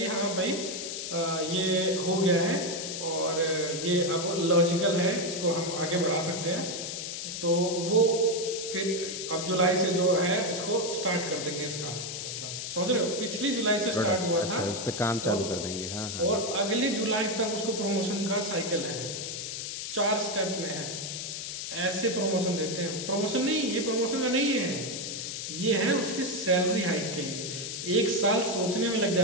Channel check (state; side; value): noise; left; hiss, 5 dB below the sound